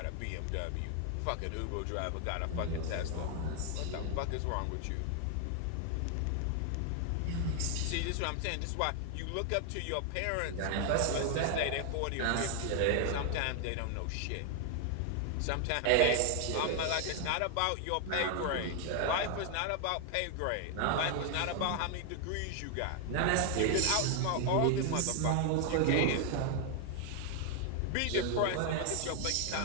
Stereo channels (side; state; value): both; different; correlation 0.00